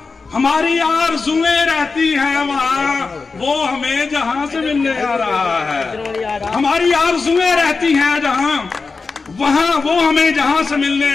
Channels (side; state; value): right; quieter; 4.4 dB